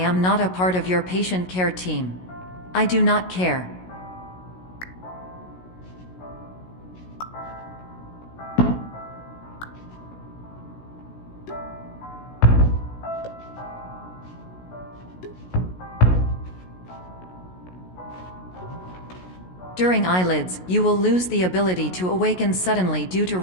not a part of your patient care team. I do not care. During eyelids, you will lose the ability to awaken suddenly due to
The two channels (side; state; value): right; late; 16 ms